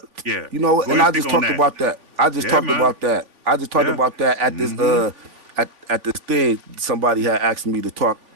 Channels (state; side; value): late; left; 3.5 ms